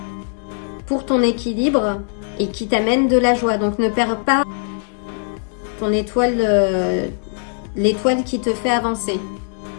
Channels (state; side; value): silent; right; digital silence